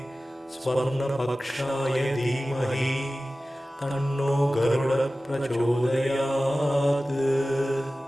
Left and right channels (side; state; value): both; normal; correlation 0.96